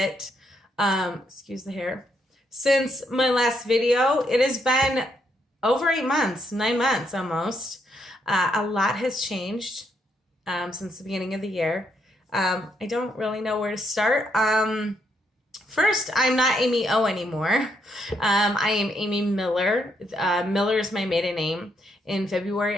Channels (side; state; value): both; normal; correlation 0.76